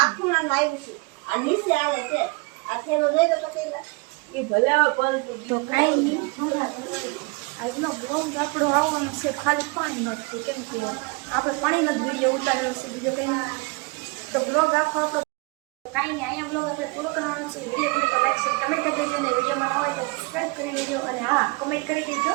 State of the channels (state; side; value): quieter; left; 28.2 dB